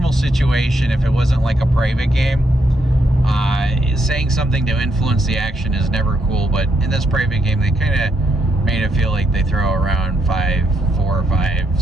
situation, if it wasn't like a private game, saying something to influence the action is never cool. But in this private game, they kind of made it feel like they throw around $4,000, $5,000,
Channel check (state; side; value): normal; both; correlation 0.77